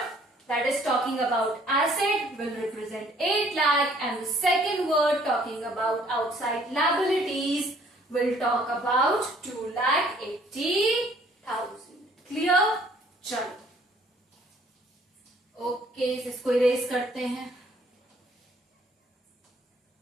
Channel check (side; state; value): both; normal; correlation 0.60